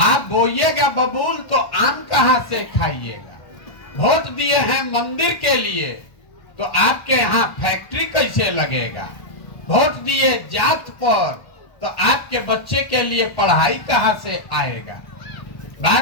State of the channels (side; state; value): right; late; 1.1 ms